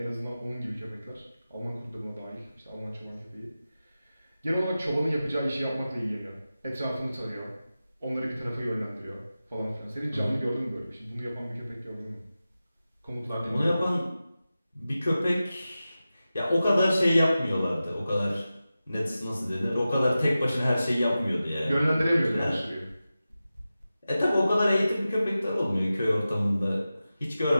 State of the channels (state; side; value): inverted; both; correlation -0.94